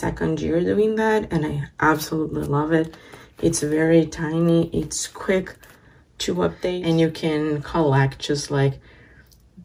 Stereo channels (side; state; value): both; identical; correlation 1.00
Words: year doing that, and I absolutely love it. It's very tiny, it's quick to update, and you can collect just like,